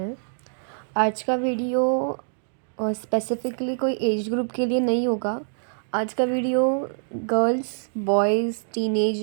आज का video specifically कोई एज ग्रुप के लिए नहीं होगा। आज का video girls, boys,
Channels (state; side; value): silent; left; digital silence